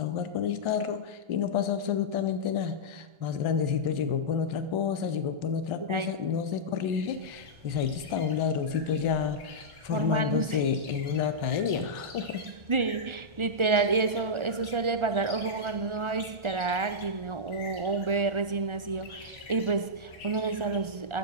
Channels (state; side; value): late; left; 1.4 ms